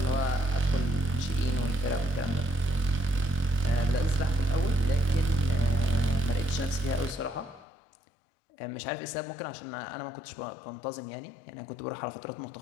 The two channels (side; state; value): right; drops out; at 7.7 s